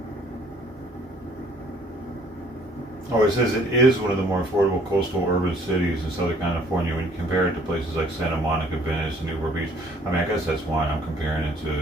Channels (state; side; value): normal; both; correlation 0.59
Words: Oh, it says it is one of the more affordable coastal urban cities in Southern California when you compare it to places like Santa Monica, Venice, and Newport Beach. I mean, I guess that's why I'm comparing it